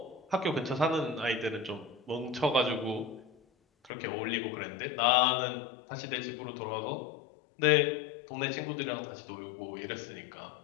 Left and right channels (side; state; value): right; drops out; at 3.9 s